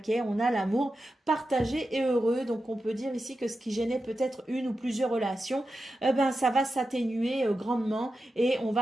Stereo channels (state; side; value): normal; both; correlation 0.91